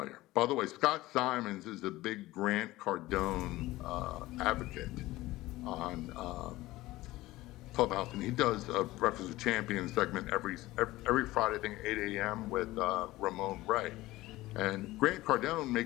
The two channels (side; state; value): right; quieter; 18.0 dB